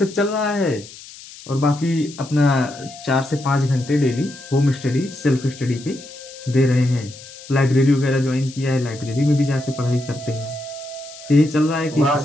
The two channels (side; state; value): left; noise; hiss, 17 dB below the sound